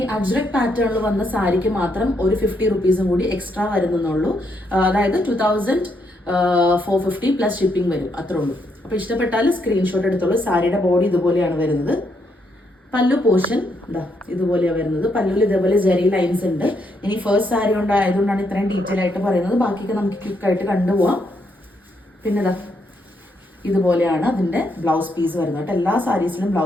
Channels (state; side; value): normal; both; correlation 0.76